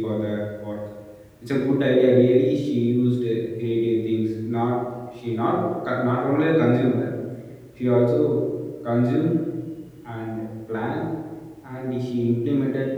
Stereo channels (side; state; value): both; identical; correlation 1.00